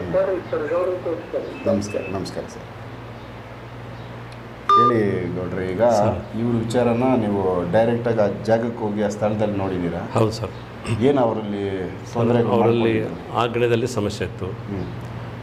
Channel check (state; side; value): identical; both; correlation 1.00